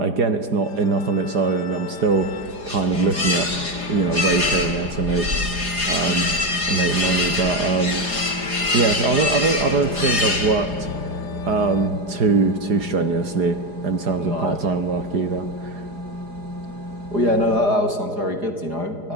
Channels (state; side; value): late; left; 4.9 ms